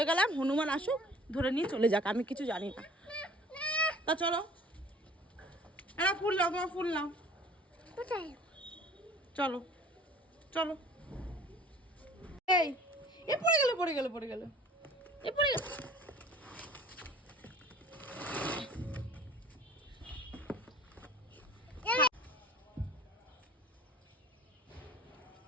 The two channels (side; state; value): both; normal; correlation 0.49